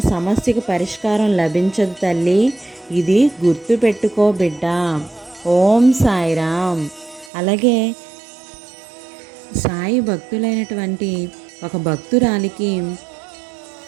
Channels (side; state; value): left; drops out; at 7.3 s